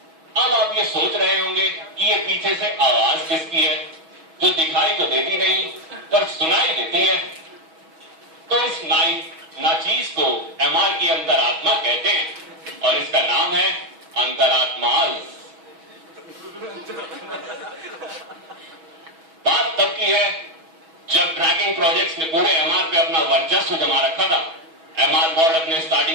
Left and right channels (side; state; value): left; late; 6.2 ms